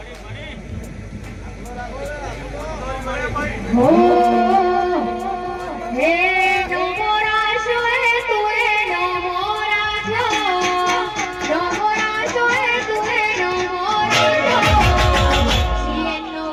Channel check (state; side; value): identical; both; correlation 1.00